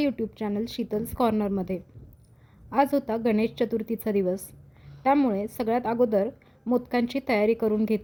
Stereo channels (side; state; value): both; identical; correlation 1.00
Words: चॅनल शीतल्स कॉर्नरमध्ये. आज होता गणेश चतुर्थीचा दिवस, त्यामुळे सगळ्यात अगोदर मोदकांची तयारी करून